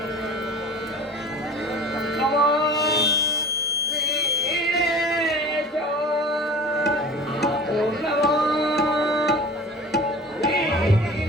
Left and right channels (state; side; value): normal; both; correlation 0.39